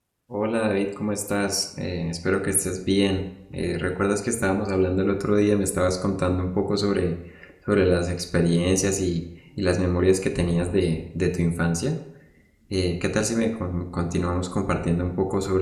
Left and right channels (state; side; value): identical; both; correlation 1.00